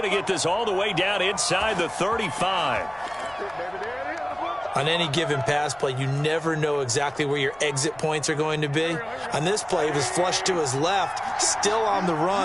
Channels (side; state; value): left; noise; rumble, 27 dB below the sound